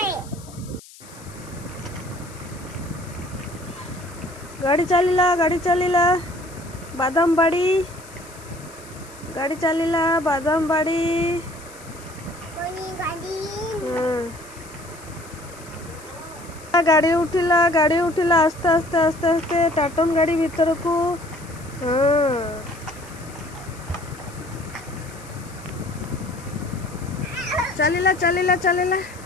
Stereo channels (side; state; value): left; noise; hiss, 20 dB below the sound